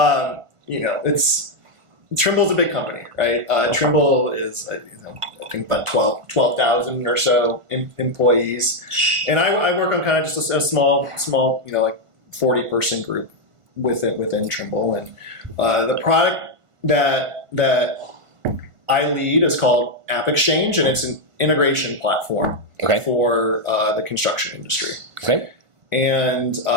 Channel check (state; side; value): late; left; 1.5 ms